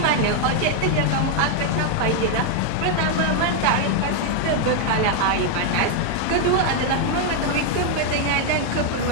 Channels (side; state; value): both; different; correlation 0.00